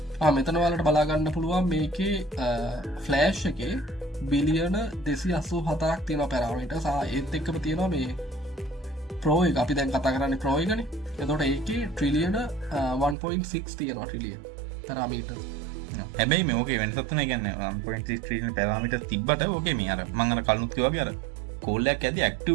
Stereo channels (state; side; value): drops out; left; at 13.2 s